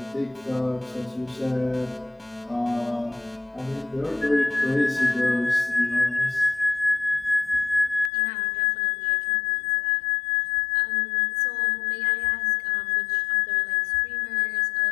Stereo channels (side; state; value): right; drops out; at 8.1 s